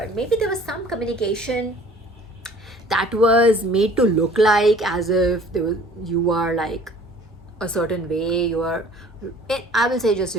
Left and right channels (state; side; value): normal; both; correlation 0.50